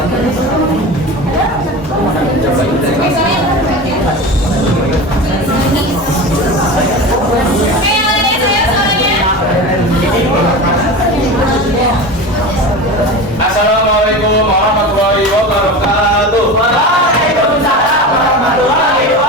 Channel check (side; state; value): both; normal; correlation 0.29